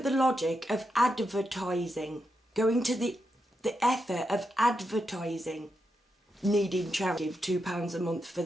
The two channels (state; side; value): normal; both; correlation 0.85